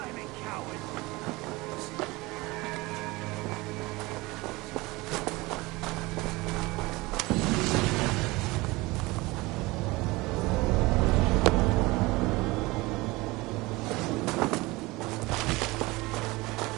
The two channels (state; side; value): quieter; left; 22.1 dB